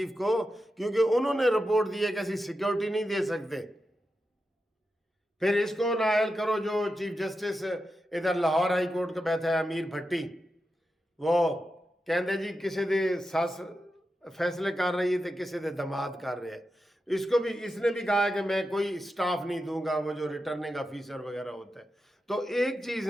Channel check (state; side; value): normal; both; correlation 0.89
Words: को, क्योंकि उन्होंने रिपोर्ट दी है कि ऐसी सिक्योरिटी नहीं दे सकते। फिर इसको नाहल करो जो चीफ जस्टिस इधर लाहौर हाई कोर्ट का बैठा है अमीर भट्टी, वो कहते जी किसी दे सस फैसले कर रही है तो किसी दे दमाद कर रहे हैं। इसको भी, इसने भी कहा है कि मैं कोई स्टाफ नहीं दूंगा, वो जो रिटर्निंग ऑफिसर वगैरह होता है। तो एक चीज